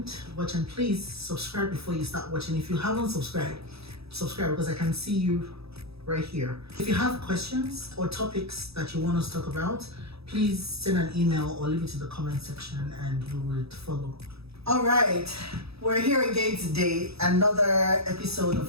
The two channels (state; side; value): late; left; 0.78 ms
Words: watch, and please subscribe before you start watching. If you haven't subscribed, subscribe because I can see you right here. If you have questions or topics that you want us to talk about, please send an email or leave it in the comment section and we will follow. All right, we're here again today, another episode of